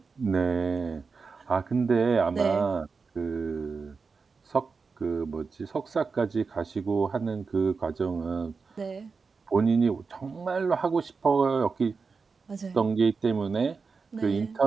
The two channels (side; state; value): left; quieter; 4.8 dB